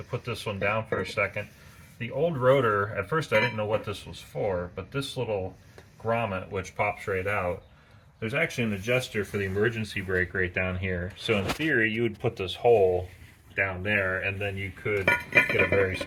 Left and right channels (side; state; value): both; identical; correlation 1.00